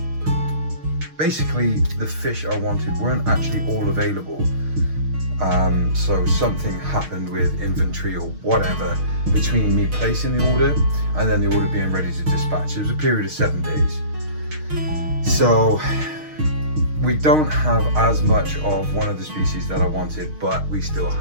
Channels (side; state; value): left; late; 6.4 ms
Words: basically the fish I wanted weren't actually all available. So something happened with inventory or whatever between me placing the order and then the order being ready to dispatch. It was a period of 7 days. So we don't have as much of one of the species that I wanted, but we still